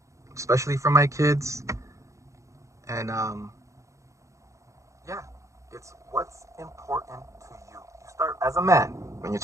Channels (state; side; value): late; left; 0.15 ms